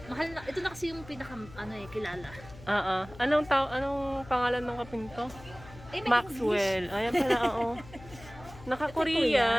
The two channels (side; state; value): left; noise; hum, 18 dB below the sound